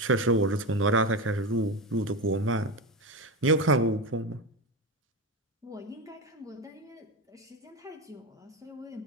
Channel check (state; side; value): normal; both; correlation 0.18